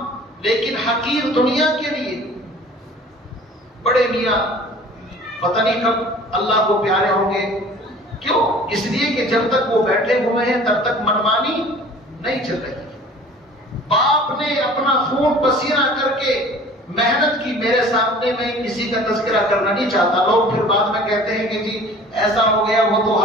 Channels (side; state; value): both; normal; correlation 0.47